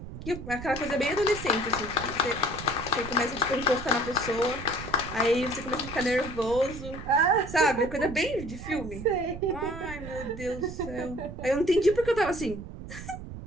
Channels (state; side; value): noise; right; rumble, 11 dB below the sound